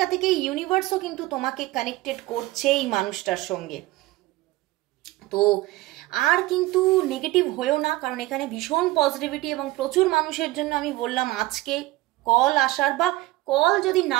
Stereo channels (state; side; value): quieter; left; 18.8 dB